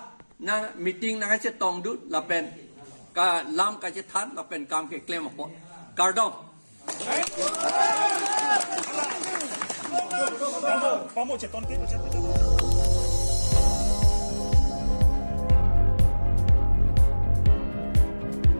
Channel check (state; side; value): inverted; both; correlation -1.00